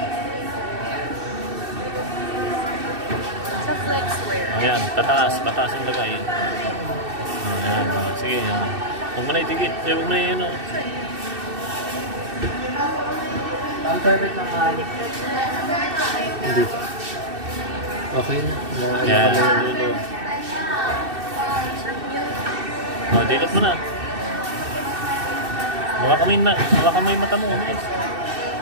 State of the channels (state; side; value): late; left; 2.6 ms